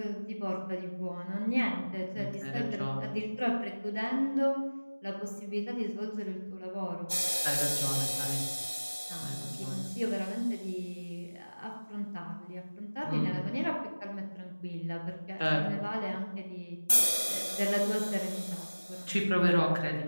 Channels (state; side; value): inverted; both; correlation -1.00